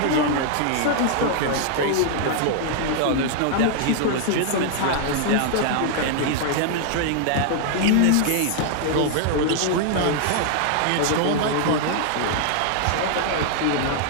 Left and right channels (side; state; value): both; different; correlation 0.00